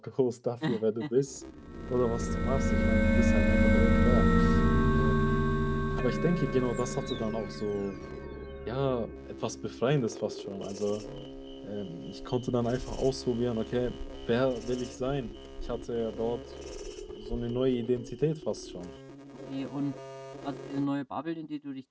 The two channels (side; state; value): both; identical; correlation 1.00